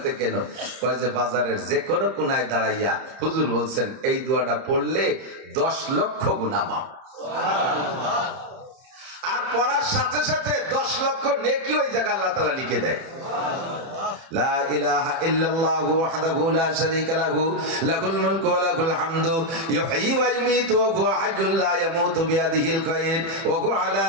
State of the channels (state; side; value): late; left; 30 ms